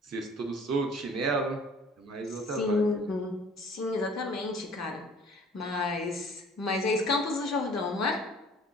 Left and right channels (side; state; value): both; normal; correlation 0.51